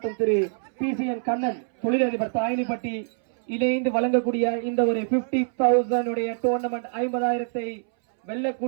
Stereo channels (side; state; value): left; silent; 62 dB below the other